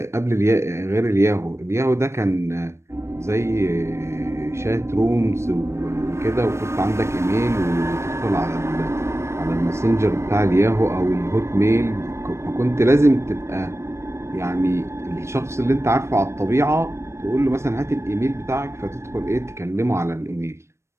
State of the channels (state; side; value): late; left; 0.13 ms